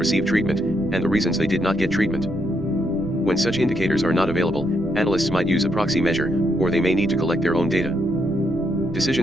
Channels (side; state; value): right; noise; rumble, 12 dB below the sound